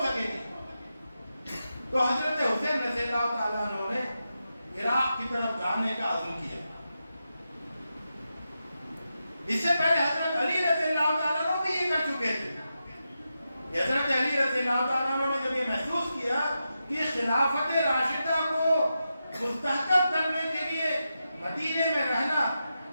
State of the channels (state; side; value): inverted; both; correlation -0.88